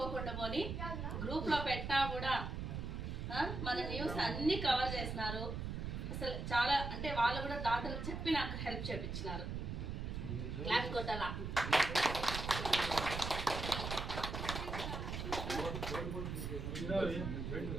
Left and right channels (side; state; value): right; noise; rumble, 4 dB below the sound